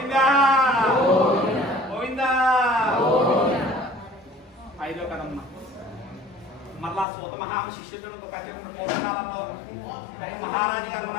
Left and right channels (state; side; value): drops out; right; at 7.1 s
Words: గోవిందా. ఐదో కదమ్మ. మళ్ళా సూత మహారాజు శిష్యుడు పూర్వకాలంలో మహారాజు గారు